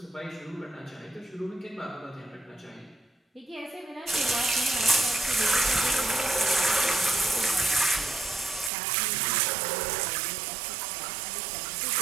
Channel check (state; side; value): drops out; left; at 8.7 s